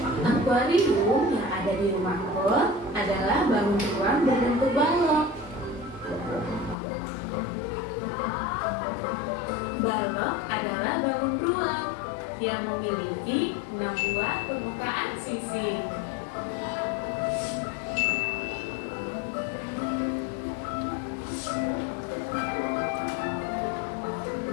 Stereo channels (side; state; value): right; drops out; at 6.8 s